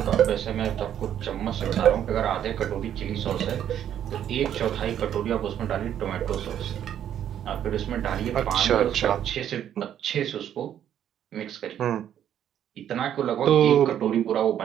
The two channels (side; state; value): left; quieter; 10.2 dB